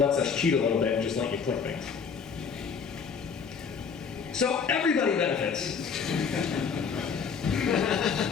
us cheat a little bit and just let you click things. So everybody benefits.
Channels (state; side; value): quieter; right; 6.1 dB